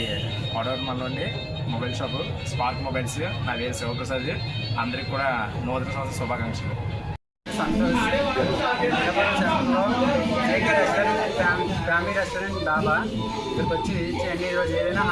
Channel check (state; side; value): identical; both; correlation 1.00